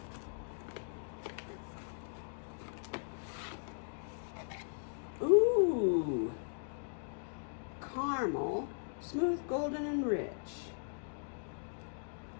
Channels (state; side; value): silent; right; digital silence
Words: Ooh, caramel, smooth, golden, and rich.